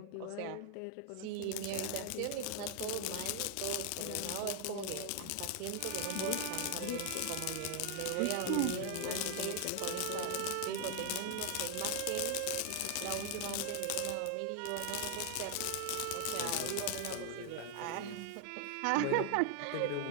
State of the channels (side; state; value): both; different; correlation 0.00